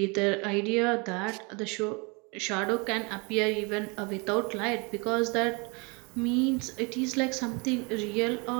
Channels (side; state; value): left; quieter; 30.0 dB